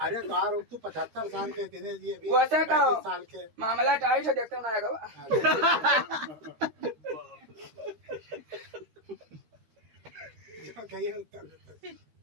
अरे बार तू 75 साल के दिनेश जी अभी वैसे कहो 35 साल के। मामला टाइट है, देखते ना आएगा। जो कहिए उत्तर देते।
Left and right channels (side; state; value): left; late; 13 ms